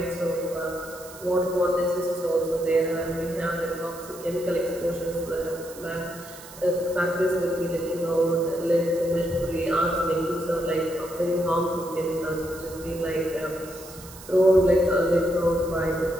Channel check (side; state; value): right; noise; hiss, 17 dB below the sound